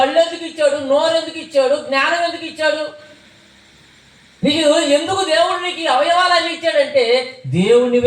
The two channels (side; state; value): both; identical; correlation 1.00